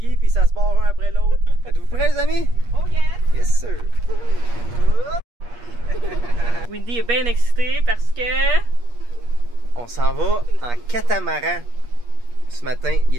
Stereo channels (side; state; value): left; late; 8.4 ms